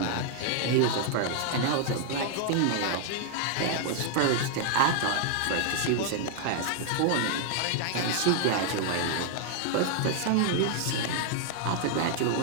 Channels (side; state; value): both; different; correlation -0.01